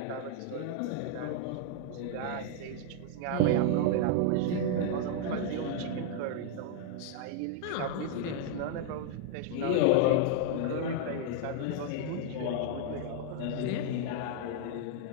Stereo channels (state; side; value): different; both; correlation -0.01